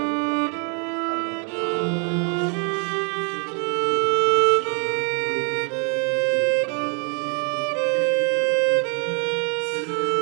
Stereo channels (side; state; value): left; quieter; 38.0 dB